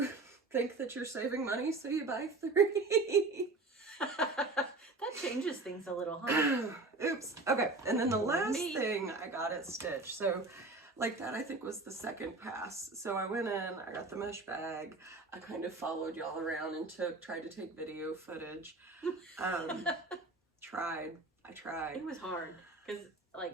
think that you're saving money, so you buy 3. That changes things a little, huh? Oops. Okay, and then the last thing I got at Stitch, so like that I think was the second pass. So I went in, I got the mesh bag, I kind of followed y'all around and tried to take video footage. I tried. It was hard,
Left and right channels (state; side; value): quieter; left; 3.3 dB